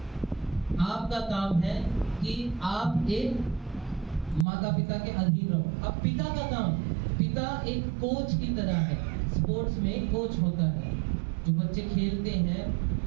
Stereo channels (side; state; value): left; drops out; at 4.5 s